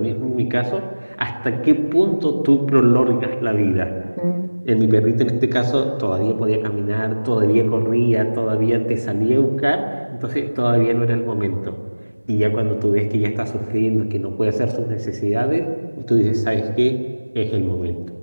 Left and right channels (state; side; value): inverted; both; correlation -1.00